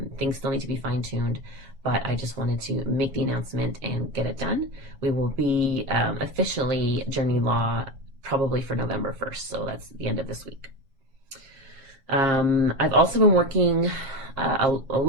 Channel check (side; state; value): left; late; 7.4 ms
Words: Things still need to be fine-tuned, but I just wanted to make the announcement and get it done. We will be officially Journey Law probably for November 1st, so that's the end of this week. I've also been working a